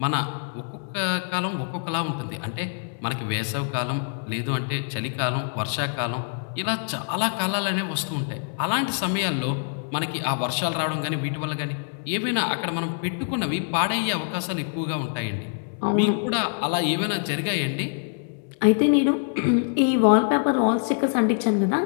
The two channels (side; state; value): right; silent; 62 dB below the other